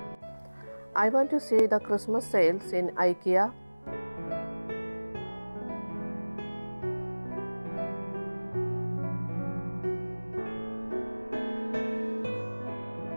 I want to see the Christmas sales in IKEA.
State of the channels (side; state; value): both; inverted; correlation -1.00